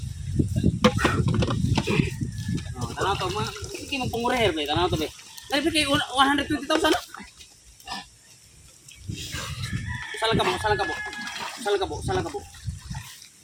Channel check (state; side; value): identical; both; correlation 1.00